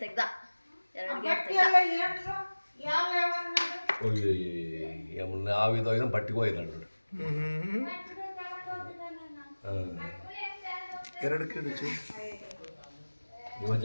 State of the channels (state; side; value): inverted; both; correlation -1.00